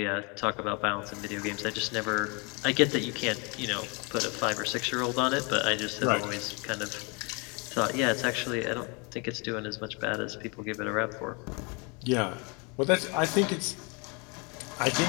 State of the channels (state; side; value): quieter; right; 31.4 dB